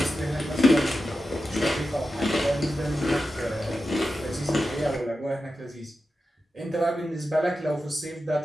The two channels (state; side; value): normal; both; correlation 0.91